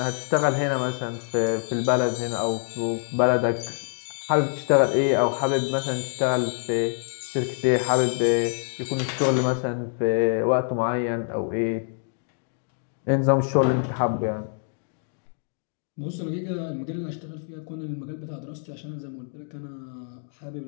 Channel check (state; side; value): silent; right; 61 dB below the other